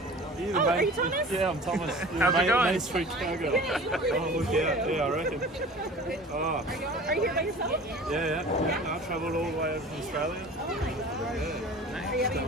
Oh, are you Thomas? Yeah, I'm Thomas. How's it going? Main Street Chicago. Oh, look out. Yeah, I reckon. Oh. Are you here by yourself? Yeah. I travelled all the way over from Australia. Oh my God. Yeah. Are you having a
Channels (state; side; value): normal; both; correlation 0.41